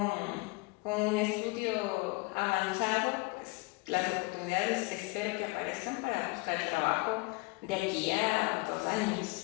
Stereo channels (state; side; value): quieter; right; 27.3 dB